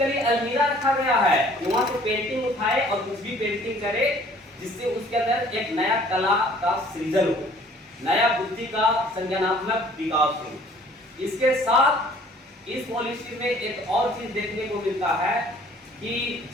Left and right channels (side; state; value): both; normal; correlation 0.55